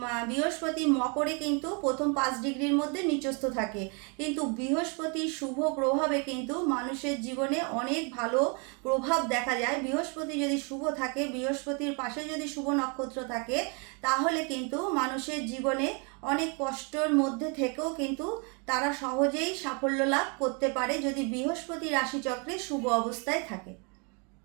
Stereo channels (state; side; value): quieter; left; 35.1 dB